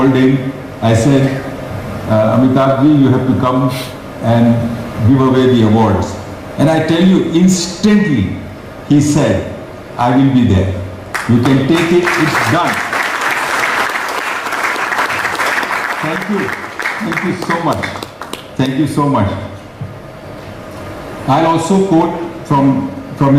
him. I said, Amitabh ji, you have to come and give away the awards. And I tell you, instantly, he said, I will be there. You can take it, it's done. Thank you. Thank you so much. Thank you so much. I'll also quote from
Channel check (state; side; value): identical; both; correlation 1.00